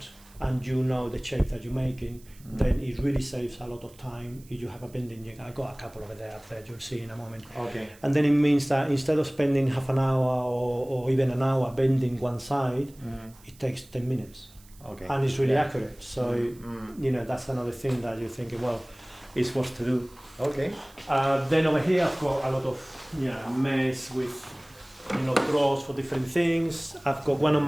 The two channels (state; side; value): noise; right; hiss, 26 dB below the sound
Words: and you know the shape that you're making, then it really saves a lot of time if you have a bending jig. I got a couple over there up there, you'll see in a moment. Okay. And then it means that instead of spending half an hour or even an hour bending one side, it takes 10 minutes. Okay. And it's really accurate. So, you know, that's another thing that you're thinking, well, it's worth to do. Okay. Then over here I've got a lot of mess with, you know, drawers for different things. I've got one of